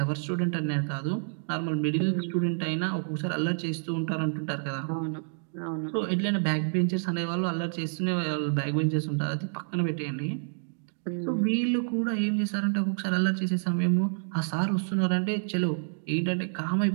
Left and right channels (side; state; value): left; silent; digital silence